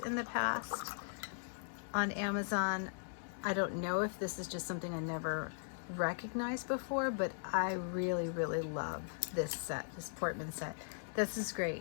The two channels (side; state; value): right; silent; 52 dB below the other